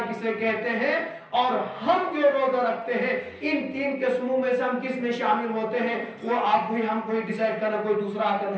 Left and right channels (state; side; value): identical; both; correlation 1.00